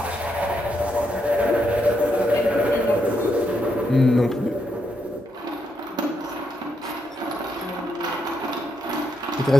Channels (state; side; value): normal; both; correlation 0.80